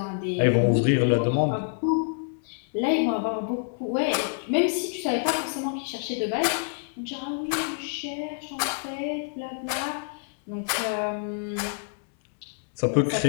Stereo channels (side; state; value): right; silent; 60 dB below the other